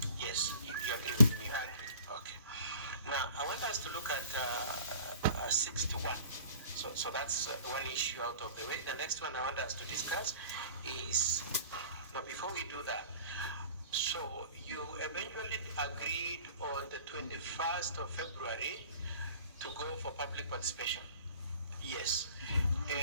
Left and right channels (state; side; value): inverted; both; correlation -0.46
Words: Yes, you agree with me? I agree. Okay. Now, I want us to look at 61. So that's one issue out of the way. The next one I want us to discuss is, now before we do that, so you eventually agreed on the 21st of February to go for public participation. Yes.